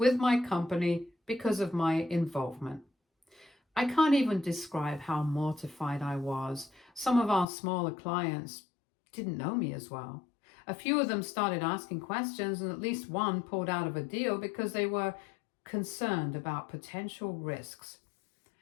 my company because of my involvement. I can't even describe how mortified I was. Some of our smaller clients didn't know me as well. A few of them started asking questions, and at least one pulled out of a deal because they were concerned about potential risks.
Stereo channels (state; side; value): drops out; right; at 7.5 s